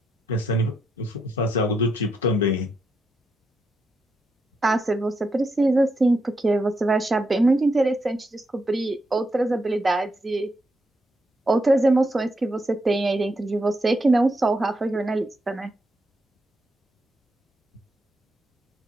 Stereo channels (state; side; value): normal; both; correlation 0.82